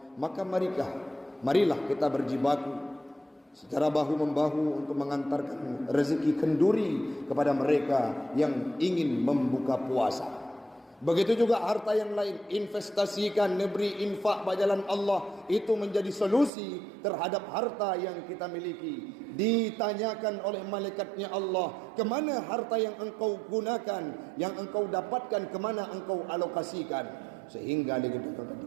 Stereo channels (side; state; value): left; drops out; at 16.5 s